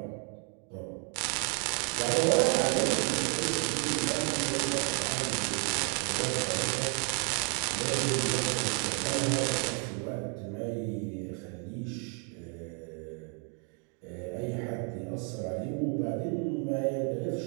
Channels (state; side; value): quieter; left; 40.0 dB